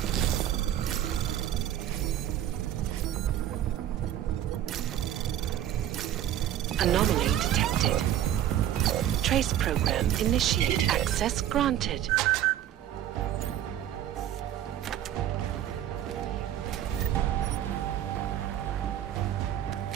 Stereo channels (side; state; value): left; quieter; 11.5 dB